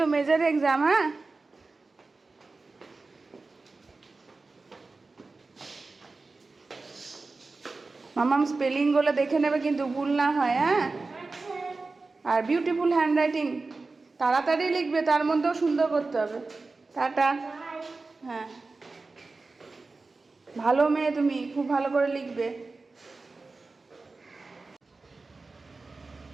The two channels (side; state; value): left; quieter; 3.7 dB